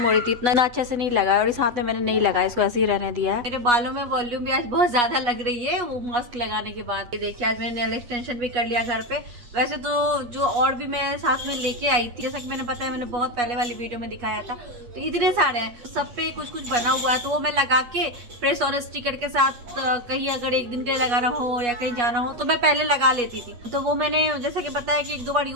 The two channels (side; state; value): left; late; 8.3 ms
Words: हो रही थी, इतना अच्छे से नहीं लगा, और इस हाथ में मैंने नहीं लगाया, इसको ऐसे ही रहने दिया है। मेरे बालों में वॉल्यूम भी आज बहुत ज्यादा लग रही है वो मास्क लगाने के बाद। ये देखिए आज मैंने नेल एक्सटेंशन भी कर लिया घर पे। वैसे तो जो और भी मैं साथ में लेके आई थी, जैसा कि मैंने बताया, मैंने बहुत पहले वाली वीडियो में दिखाया था, तो इतने सारे हैं, सब पे कुछ कुछ बना हुआ है, तो वो मैं लगा के प्रेस और स्टिकर के साथ कहीं अगर एक दिन के लिए लगाना हो या कहीं जाना हो तो मैं पहले लगा लेती थी। तो वो मैंने जैसा कि बताया कि 1-2 बार